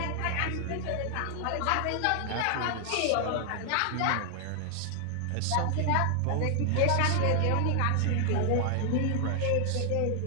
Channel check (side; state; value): both; different; correlation 0.00